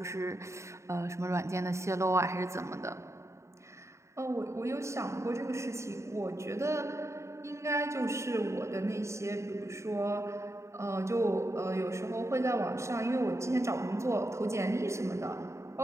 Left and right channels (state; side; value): late; left; 0.14 ms